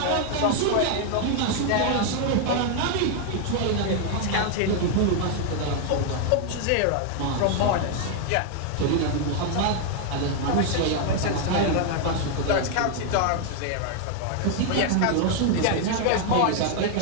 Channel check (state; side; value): different; both; correlation 0.00